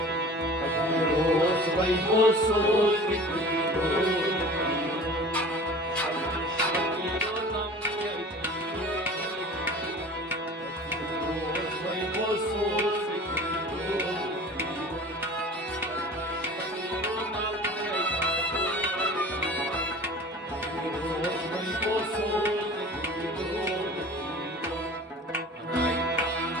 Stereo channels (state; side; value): normal; both; correlation 0.41